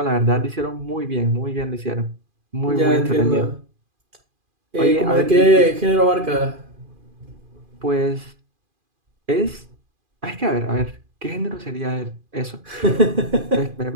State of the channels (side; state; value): left; late; 2.4 ms